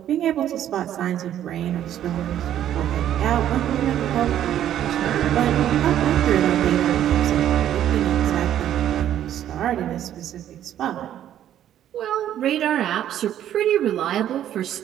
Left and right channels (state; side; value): quieter; left; 11.1 dB